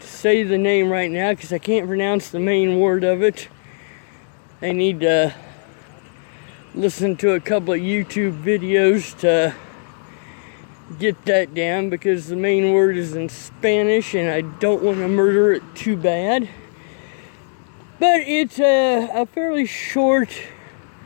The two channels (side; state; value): right; silent; 63 dB below the other